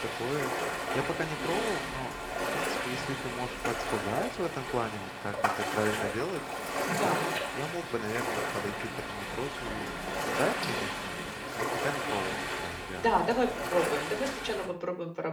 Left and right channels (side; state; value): both; identical; correlation 1.00